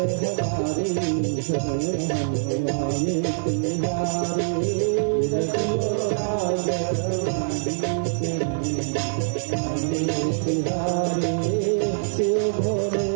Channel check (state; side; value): silent; left; digital silence